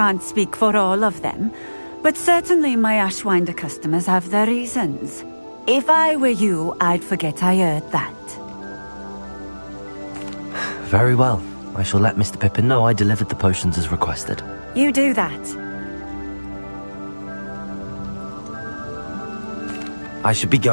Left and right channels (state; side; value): inverted; both; correlation -1.00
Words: speak for all of them, but certainly my Ashwinder customers have their reasons. If I were you, I'd forget I heard that. Very well. I shall let Mr. Pippin know I delivered the potions as requested. You do that. I should be